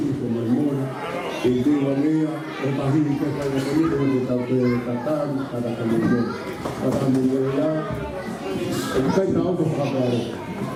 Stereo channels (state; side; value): identical; both; correlation 1.00